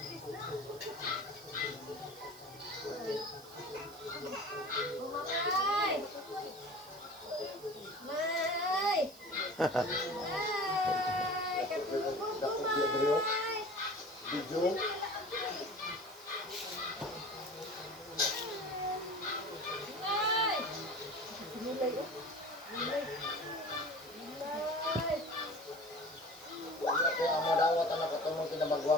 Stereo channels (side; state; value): right; noise; hiss, 20 dB below the sound